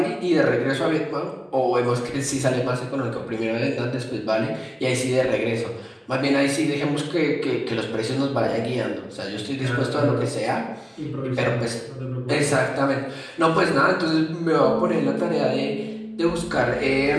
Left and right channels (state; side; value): identical; both; correlation 1.00